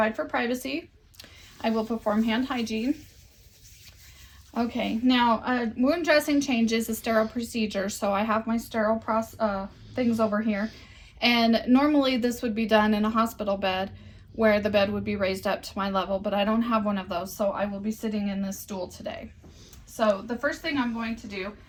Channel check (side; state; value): both; identical; correlation 1.00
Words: for privacy. I will perform hand hygiene. Okay, now wound dressing change is a sterile procedure, so I have my sterile things over here. And normally this would be done in a hospital bed where the bed would be raised up to my level, but I don't have one of those, so I will be sitting in this stool today. So the first thing I'm going to do